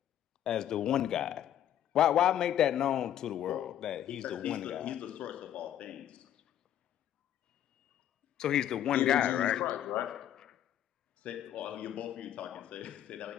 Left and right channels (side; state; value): right; quieter; 11.0 dB